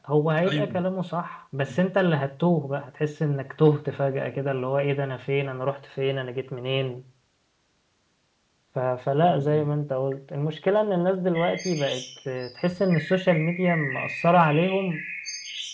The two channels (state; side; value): identical; both; correlation 1.00